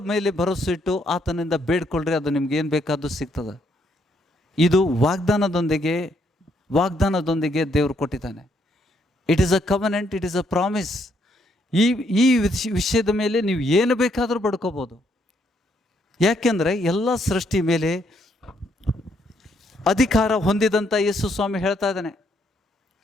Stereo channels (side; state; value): both; normal; correlation 0.72